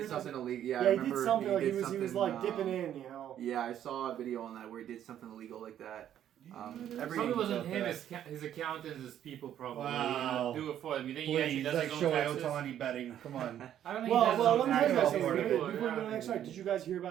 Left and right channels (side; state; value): left; quieter; 10.7 dB